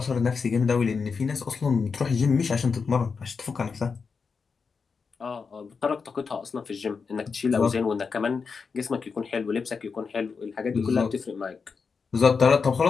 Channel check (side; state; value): right; quieter; 5.3 dB